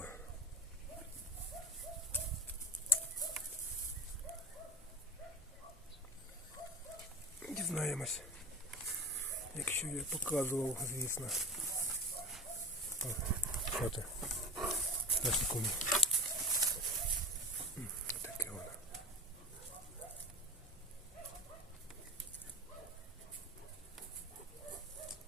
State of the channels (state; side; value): normal; both; correlation 0.31